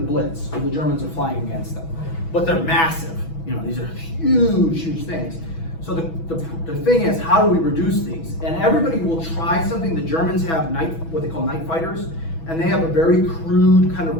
when the Germans are flying against them. But they're massive. You know, these are huge things. So the thing is, how do we reduce these? And everybody will try something. The Germans have what they call night fighters, and they have a very crude kind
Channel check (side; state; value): right; late; 6.1 ms